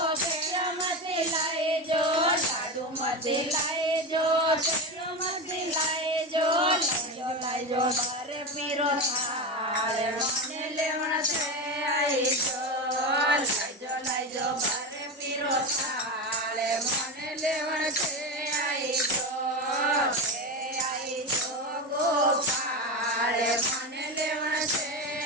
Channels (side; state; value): both; normal; correlation 0.19